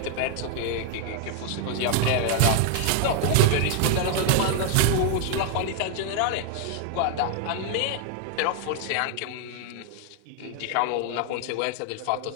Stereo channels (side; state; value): both; different; correlation 0.00